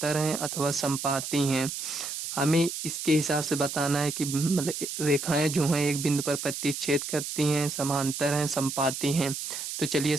हैं अथवा समपाती हैं। हमें इसके हिसाब से बताना है कि मतलब रेखाएं जो हैं एक बिंदु पर प्रतिच्छेद करती हैं, समांतर हैं, समपाती हैं। तो चलिए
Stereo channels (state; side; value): noise; right; hiss, 6 dB below the sound